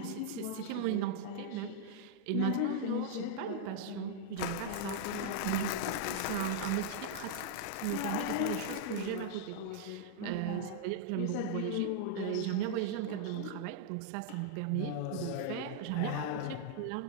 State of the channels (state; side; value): different; both; correlation -0.01